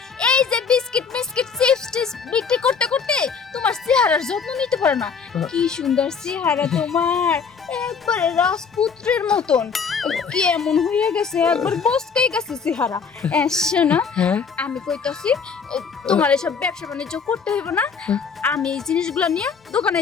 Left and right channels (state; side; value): quieter; right; 5.9 dB